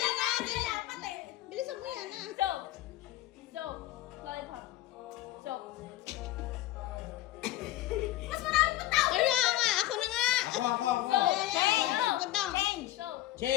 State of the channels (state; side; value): quieter; right; 15.2 dB